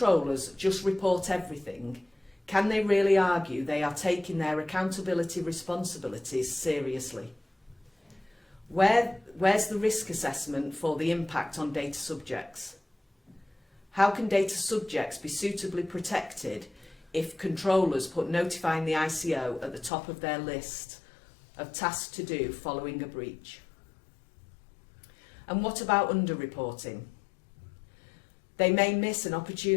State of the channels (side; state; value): right; drops out; at 19.9 s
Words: just report everything, can they really argue they are taking their accountability responsibilities seriously? Where's the risk assessment for the impact on data subjects? How can data subjects be suitably protected if controllers put notifying the ICO at the top of their list of tasks to do following a breach? And what about under-reporting? They may miss an